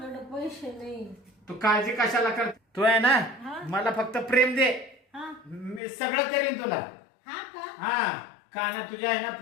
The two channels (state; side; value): drops out; right; at 5.8 s